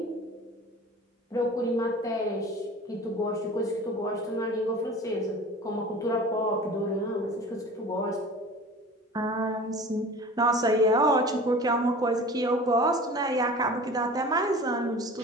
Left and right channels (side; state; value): both; normal; correlation 0.40